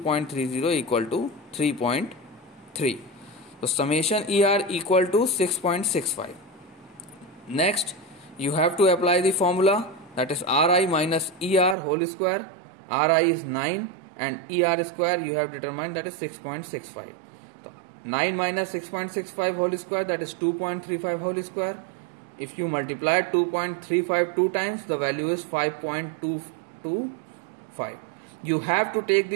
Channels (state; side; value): drops out; left; at 11.8 s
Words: equal to 3.3. So summation ER equal to 6.65. Next, you have to apply the formula, that is RI minus ER whole square. RI is 9 and ER square you have determined, that is 6.65. So 9 minus 6.65 whole square, that is 2.35 whole square. If you multiply 2.35 two times, the value is 5.225. You have to take